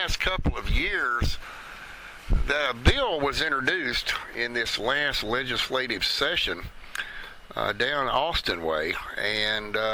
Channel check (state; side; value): identical; both; correlation 1.00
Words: couple of years that a bill was introduced in this last legislative session down Austin way, and